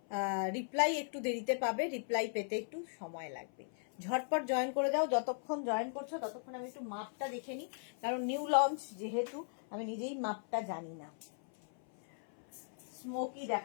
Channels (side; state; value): right; silent; 53 dB below the other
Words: রিপ্লাই একটু দেরিতে পাবে, রিপ্লাই পেতে একটু সময় লাগবে। ঝটপট জয়েন করে দাও, যতক্ষণ জয়েন করছো ততক্ষণ আমি একটু মাপটা দেখে নিই, কারণ নিউ লঞ্চ যেহেতু আমি নিজেই মাপটা জানি না। স্মোকি